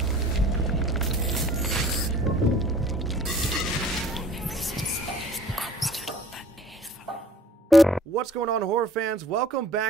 What's going on, horror fans? Welcome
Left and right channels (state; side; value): normal; both; correlation 0.51